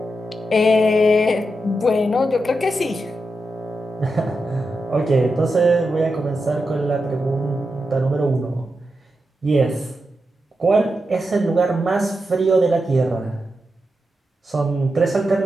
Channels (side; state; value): both; normal; correlation 0.88